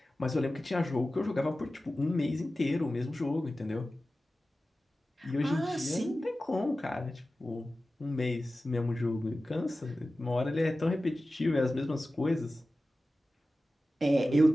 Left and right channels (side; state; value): both; normal; correlation 0.95